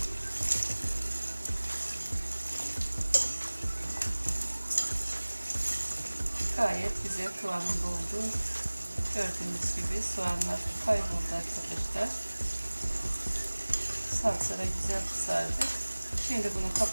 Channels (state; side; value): inverted; both; correlation -1.00